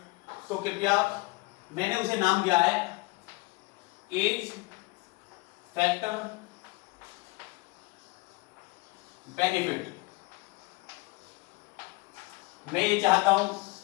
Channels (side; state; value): right; quieter; 25.0 dB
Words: तो कृपया, मैंने उसे नाम दिया है एज फैक्टर बेनिफिट। मैं ये चाहता हूं